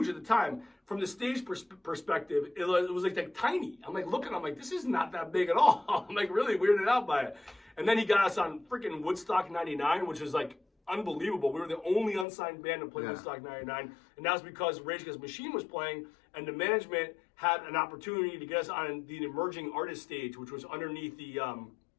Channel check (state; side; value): drops out; right; at 12.2 s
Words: at the time. From the stage perspective, it was like tiny. I'm like looking, I'm like, this is not that big at all. I'm like really weirded out by it. And then he got us on freaking Woodstock 99, which is like unbelievable. We were the only unsigned band to play Woodstock 99, and that was because Rage Against the Machine was playing, and the management had an opportunity to get us on the emerging artist stage, which was underneath the